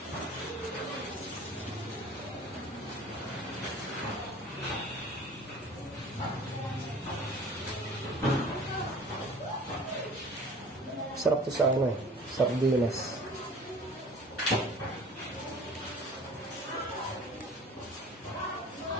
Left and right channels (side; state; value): both; normal; correlation 0.46